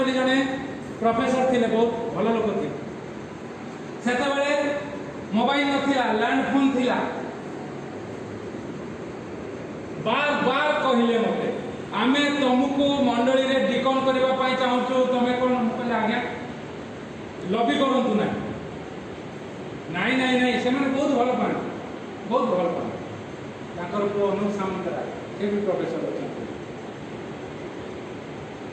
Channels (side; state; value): both; identical; correlation 1.00